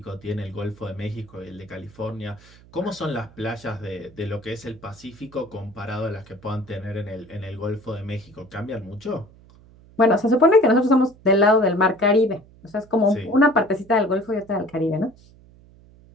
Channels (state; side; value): noise; right; hum, 25 dB below the sound